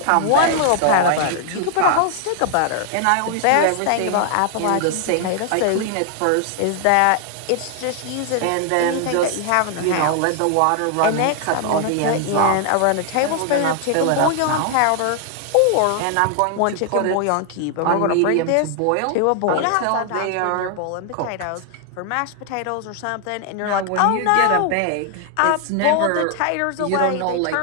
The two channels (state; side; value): different; both; correlation 0.00